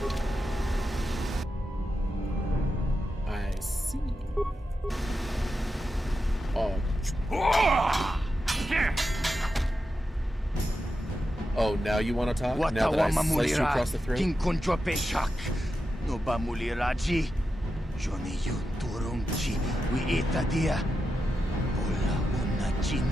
I see. Oh, now you want to talk? Now that I sliced you across the throat? King Kunjo Peshak. No Bamuliraji. Johnny you turumchi. We itadia. Ola una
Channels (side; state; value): both; normal; correlation 0.89